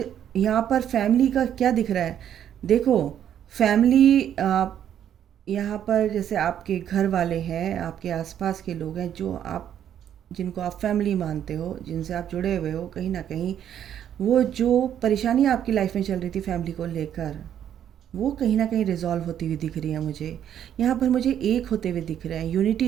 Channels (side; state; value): left; quieter; 9.9 dB